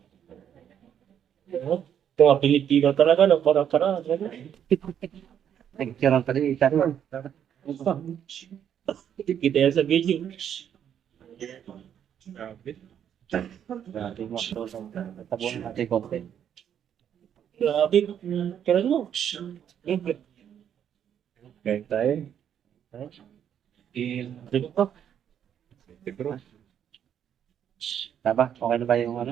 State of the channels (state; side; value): quieter; left; 9.2 dB